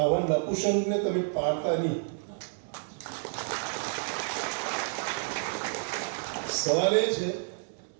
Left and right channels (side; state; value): left; silent; 58 dB below the other